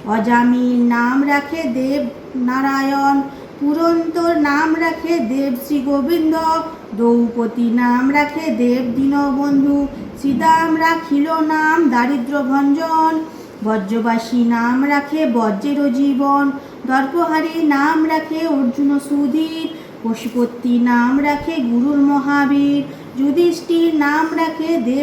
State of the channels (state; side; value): identical; both; correlation 1.00